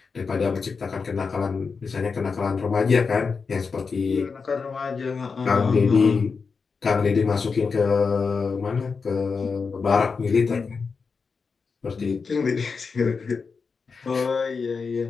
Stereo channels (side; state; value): right; quieter; 5.1 dB